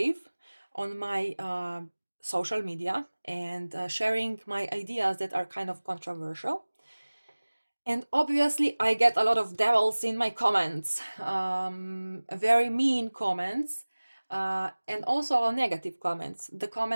on my social media and sharing my ideas that are kind of controversial. And obviously, I get a lot of devils in my comments, very mean comments, and also negative comments, the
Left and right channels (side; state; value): both; inverted; correlation -1.00